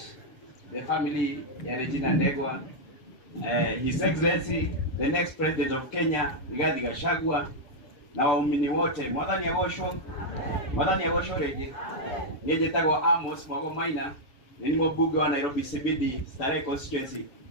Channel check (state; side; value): late; right; 7.8 ms